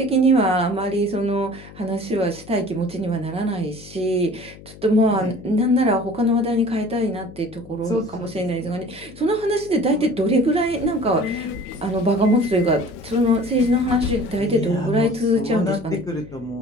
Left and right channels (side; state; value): left; noise; hum, 19 dB below the sound